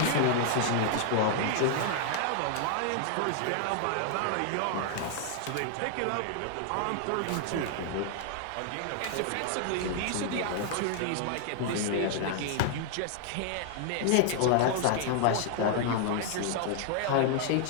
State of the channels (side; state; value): both; different; correlation 0.00